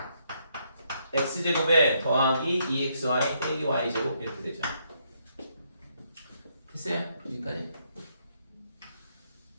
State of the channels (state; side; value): inverted; both; correlation -0.74